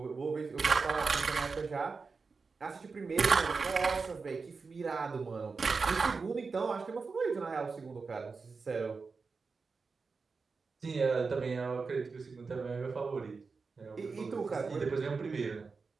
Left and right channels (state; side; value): quieter; left; 4.6 dB